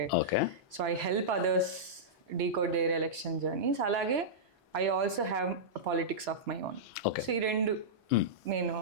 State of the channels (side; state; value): both; normal; correlation -0.13